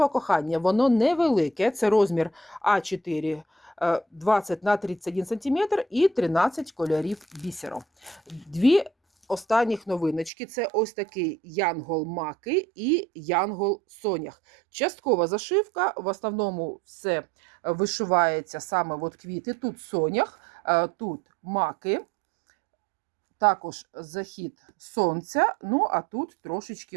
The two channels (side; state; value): left; drops out; at 10.3 s